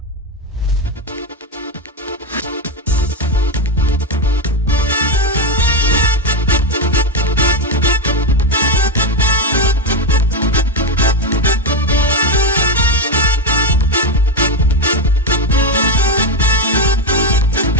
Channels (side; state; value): both; normal; correlation 0.08